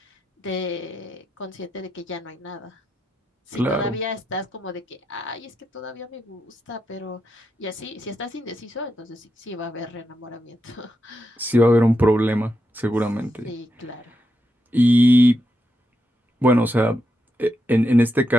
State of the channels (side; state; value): both; normal; correlation 0.84